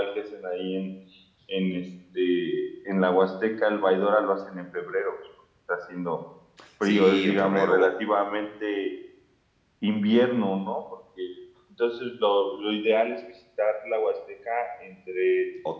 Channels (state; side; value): identical; both; correlation 1.00